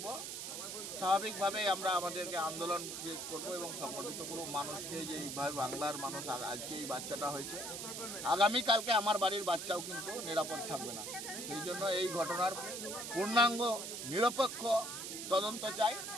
স্বাভাবিকভাবে আমরা আমাদেরকে আন্দোলন করবো এবং সংগঠিত করবো মানুষকে, যে এইভাবে বাংলার মানুষ আজকে এই বাচ্চাটা হয়েছে, আগামীকালকে আমার বাড়ির বাচ্চাও কিন্তু নিরাপদ থাকবে না। সেই জন্য এই ঘটনার পূর্ণাঙ্গ নিরপেক্ষ তদন্ত চাই,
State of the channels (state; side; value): noise; right; hiss, 6 dB below the sound